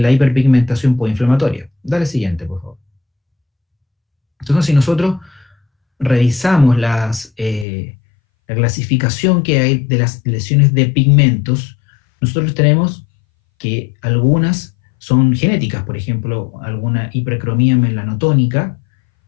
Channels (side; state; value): right; drops out; at 7.7 s